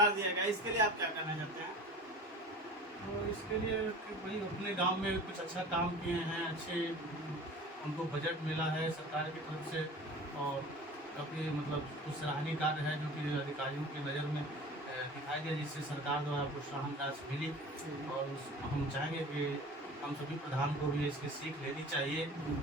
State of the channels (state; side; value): normal; both; correlation 0.39